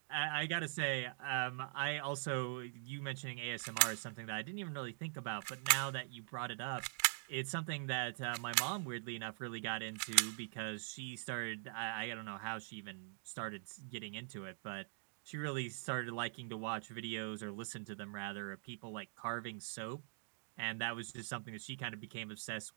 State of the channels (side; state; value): left; silent; digital silence